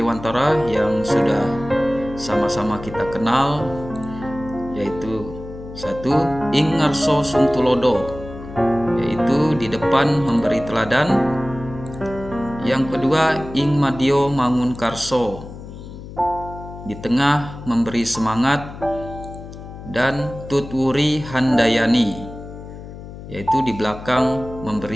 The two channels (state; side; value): noise; left; hum, 13 dB below the sound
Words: yang sudah sama-sama kita kenal, yaitu 1. Ing ngarso sung tulodo, yaitu di depan memberi teladan. Yang kedua, ing madyo mangun karso, di tengah memberi semangat. Dan tutwuri handayani, yaitu di belakang